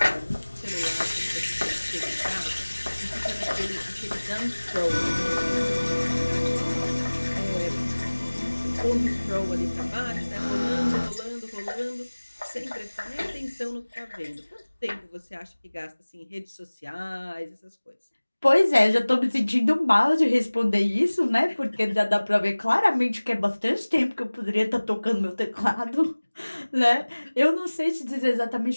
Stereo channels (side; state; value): both; inverted; correlation -1.00